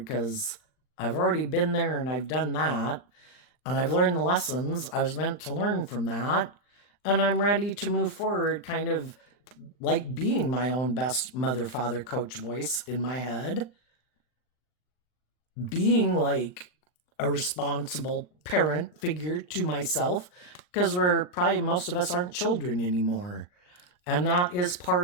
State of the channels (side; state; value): right; late; 39 ms